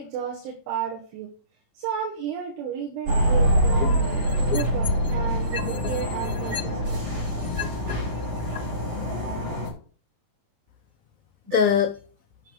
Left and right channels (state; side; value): late; left; 20 ms